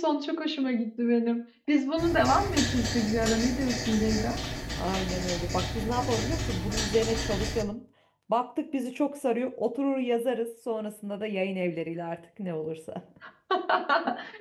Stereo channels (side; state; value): both; identical; correlation 1.00